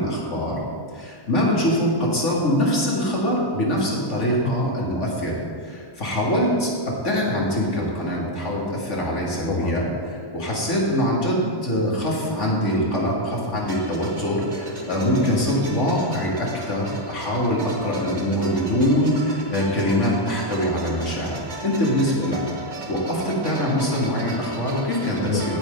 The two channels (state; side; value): late; right; 1.1 ms